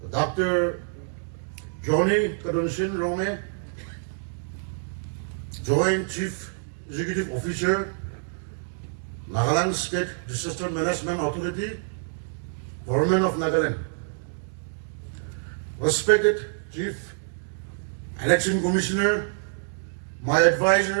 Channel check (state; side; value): silent; left; digital silence